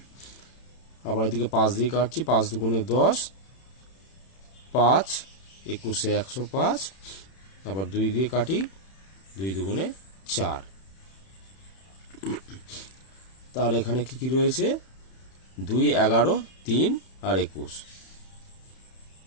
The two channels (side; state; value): right; late; 31 ms